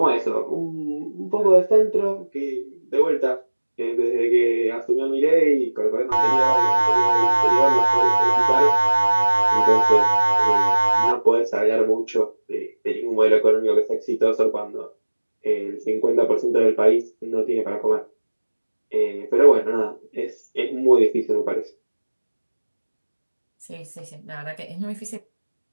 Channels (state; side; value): inverted; both; correlation -1.00